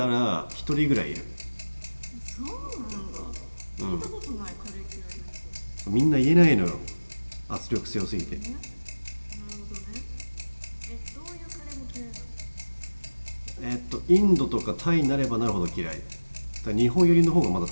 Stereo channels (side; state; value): both; inverted; correlation -1.00